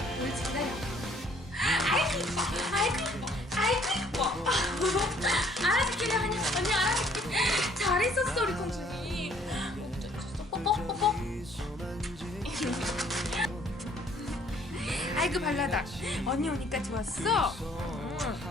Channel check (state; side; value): normal; both; correlation 0.61